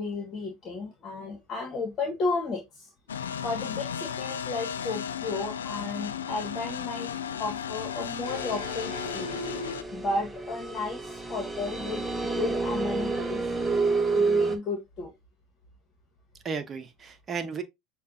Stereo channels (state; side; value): normal; both; correlation 0.50